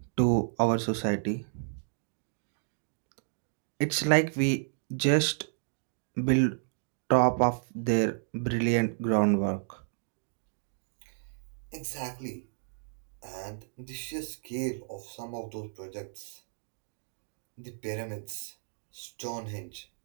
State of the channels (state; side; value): silent; left; digital silence